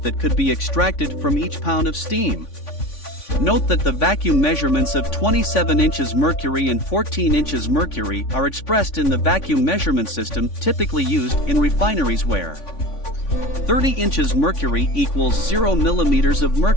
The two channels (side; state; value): right; late; 3.5 ms